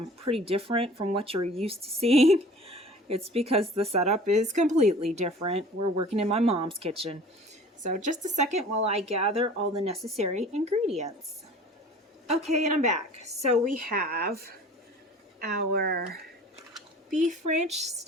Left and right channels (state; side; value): normal; both; correlation 0.45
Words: pretty different from what you're used to seeing, it's because the setup is completely different. We're working in my mom's kitchen. So just a second while I gather all the necessary ingredients. Okay, and I'm back. So we have our beef ranch